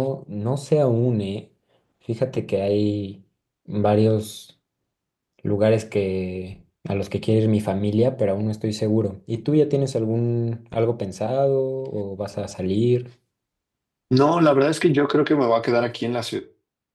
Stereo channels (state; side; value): identical; both; correlation 1.00